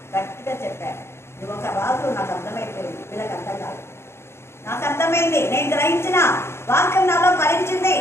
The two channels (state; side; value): late; right; 0.12 ms